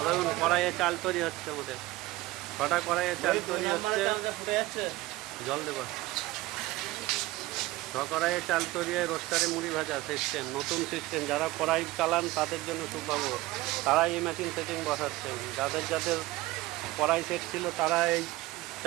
কড়াইয়ে চাল তৈরি হচ্ছে আমাদের। ছটা কড়াইয়ে চাল তৈরি হচ্ছে। জল দেবো। কড়াইয়ে চাল তৈরি হয়ে রোস্টারে মুড়ি ভাজা সিস্টেম, নতুন সিস্টেম। যারা কড়াই চালান তাদের জন্য সুখবর, তারা এই মেশিন সেটিং বসাচ্ছেন। যাদের যাদের কড়াই সেট ছিল তারা এই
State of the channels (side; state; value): left; quieter; 18.6 dB